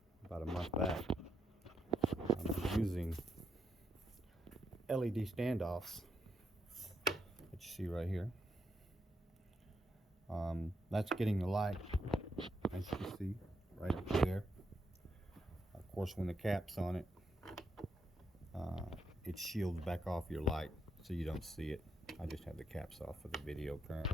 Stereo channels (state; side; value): normal; both; correlation 0.80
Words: about a month back. I'm using LED standoffs that you see right here. That's getting the light, as you can see, right up there. Of course, when the cap's on it, it shields back off your light so you don't see it. I just have the caps off for the video